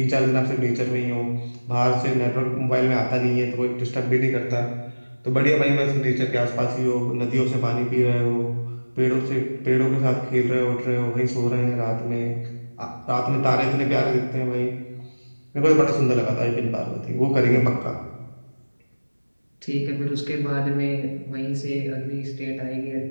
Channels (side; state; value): both; inverted; correlation -1.00